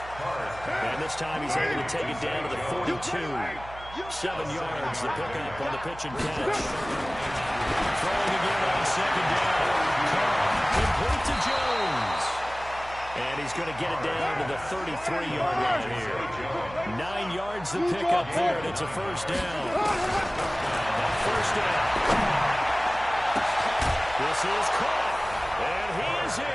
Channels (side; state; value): right; noise; hum, 16 dB below the sound